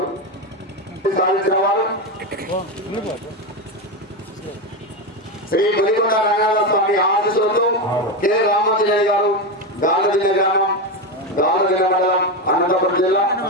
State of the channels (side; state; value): both; normal; correlation 0.13